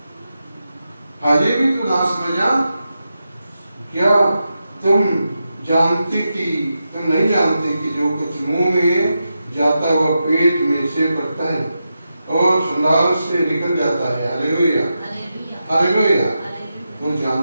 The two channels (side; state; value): both; inverted; correlation -0.88